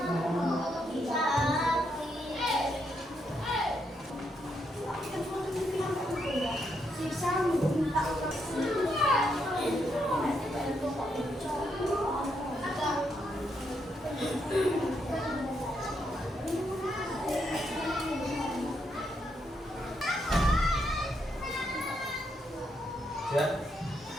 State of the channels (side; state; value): both; normal; correlation 0.78